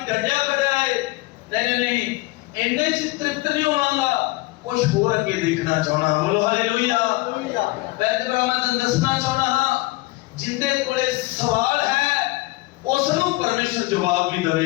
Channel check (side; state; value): right; quieter; 21.9 dB